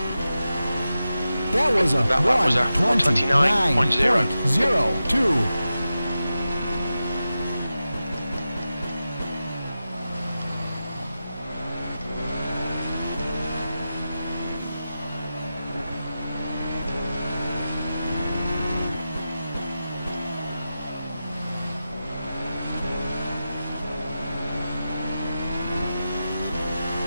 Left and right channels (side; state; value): both; inverted; correlation -0.92